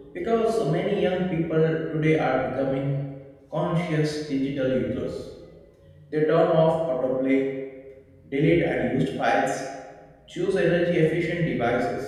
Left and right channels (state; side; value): identical; both; correlation 1.00